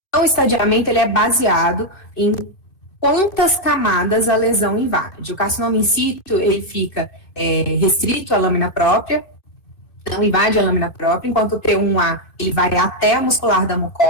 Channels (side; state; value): right; late; 2.5 ms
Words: Então, o estadiamento ele é baseado em quantas camadas a lesão invade. O carcinoma in situ, ele fica restrito à lâmina própria, não invade a lâmina própria, enquanto o T1A ele vai até a muscular da